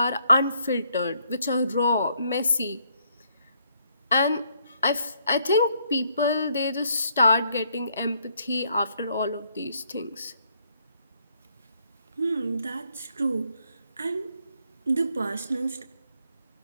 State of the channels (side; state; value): both; inverted; correlation -0.71